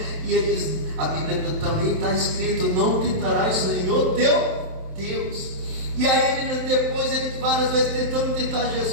E ele diz, a Bíblia também está escrito: não tentarás o Senhor teu Deus. E aí ele, depois ele várias vezes tentando tentar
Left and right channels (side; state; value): left; late; 27 ms